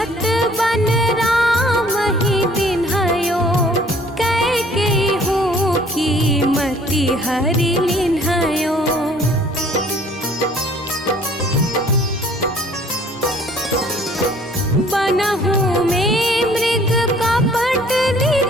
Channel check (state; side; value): normal; both; correlation 0.56